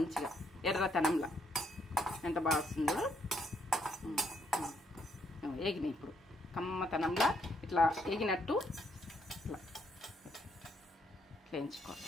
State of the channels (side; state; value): both; normal; correlation 0.73